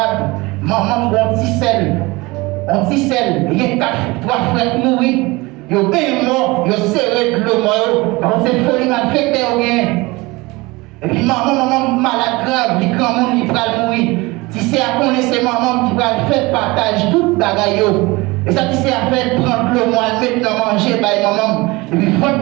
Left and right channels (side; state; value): left; quieter; 22.9 dB